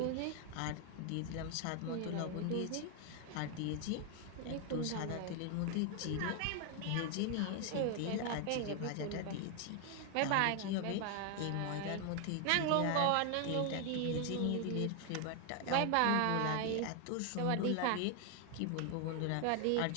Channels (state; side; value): different; both; correlation 0.00